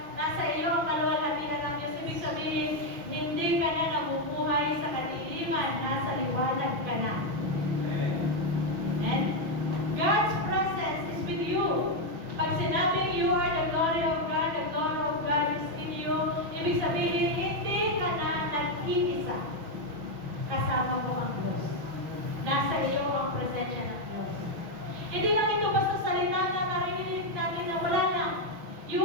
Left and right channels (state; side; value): late; left; 5.9 ms